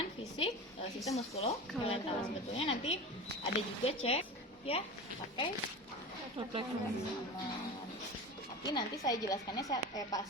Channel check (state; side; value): normal; both; correlation 0.30